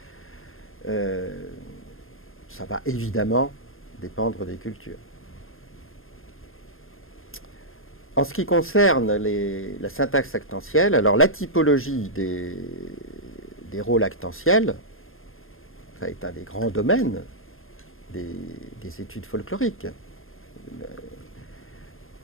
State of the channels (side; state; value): right; late; 0.60 ms